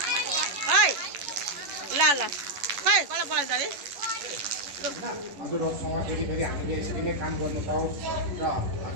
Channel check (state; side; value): late; left; 11 ms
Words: है ल ल खै कसलाई बोलाइन्छ अरे हजुरहरूसँग फेरि फेरि हामीले यसरी नै काम गर्नु पाऊँ र